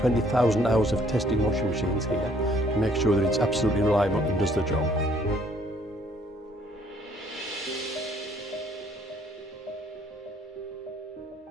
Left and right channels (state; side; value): normal; both; correlation 0.63